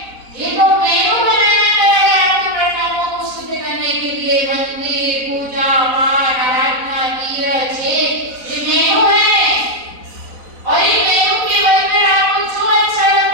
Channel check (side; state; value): left; late; 4.0 ms